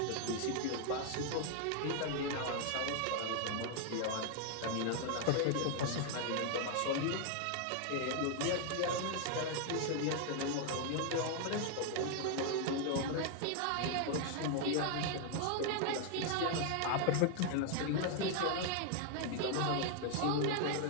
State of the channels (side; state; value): both; different; correlation 0.00